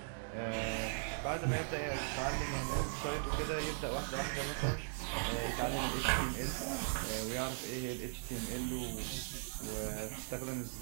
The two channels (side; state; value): left; silent; 52 dB below the other